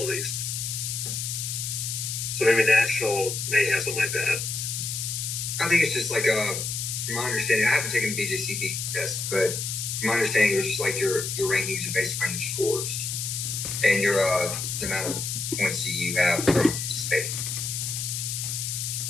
at least. So maybe national may have something like that. I think it's just like from my understanding, I haven't taken the BJCP test, but from my understanding, it's just like your rankings are based on your scores and your the amount of points that you have from participating.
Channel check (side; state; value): left; noise; hiss, 3 dB below the sound